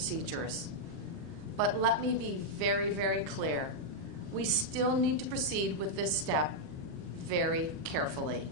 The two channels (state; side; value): late; left; 39 ms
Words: But let me be very, very clear. We still need to proceed with this step very carefully.